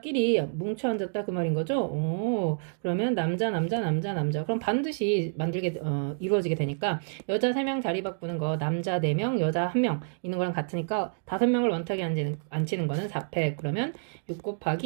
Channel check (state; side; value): silent; left; digital silence